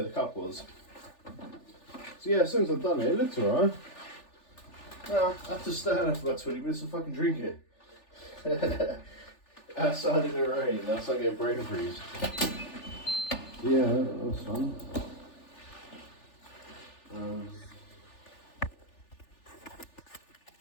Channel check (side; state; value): right; late; 3.4 ms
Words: the cup was. So yeah, as soon as I've done it, it looks alright. Now I have to stand there for about 20 minutes and fucking drink it. Outside in the rain, that's like a brain freeze. Yeah, that was fun.